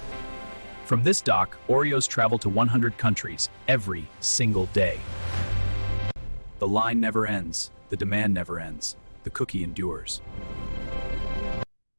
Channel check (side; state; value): both; inverted; correlation -1.00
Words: From this dock, Oreos travel to 100 countries every single day. The line never ends, the demand never ends, the cookie endures.